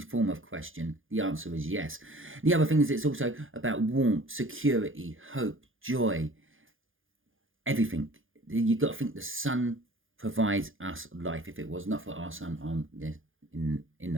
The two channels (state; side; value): late; left; 0.58 ms